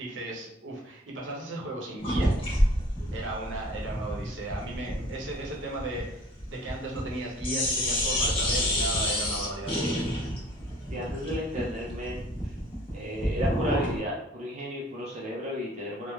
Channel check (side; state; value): both; normal; correlation 0.51